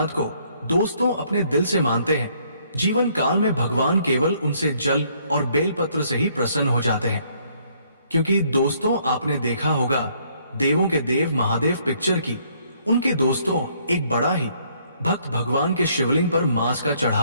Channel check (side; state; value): both; inverted; correlation -0.66